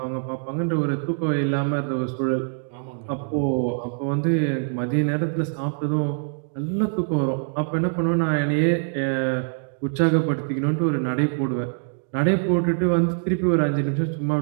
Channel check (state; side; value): silent; left; digital silence